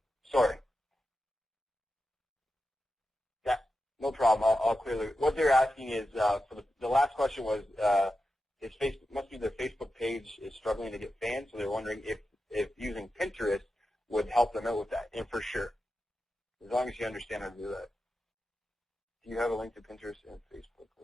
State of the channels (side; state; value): both; normal; correlation 0.90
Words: Sorry. Yeah, no problem. I'll clearly. What they're asking is, for the last question was, must be their Facebook page is struggling to get fans, so they're wondering if using Pinterest would help them out with that. And for sure, as long as you understand how to do that. Do you have a link to Pinterest and Facebook